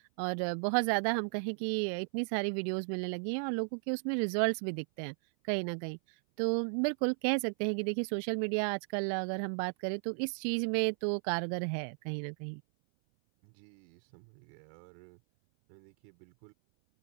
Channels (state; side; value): silent; left; 55 dB below the other